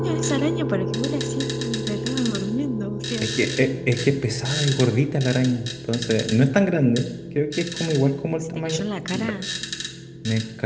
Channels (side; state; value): both; identical; correlation 1.00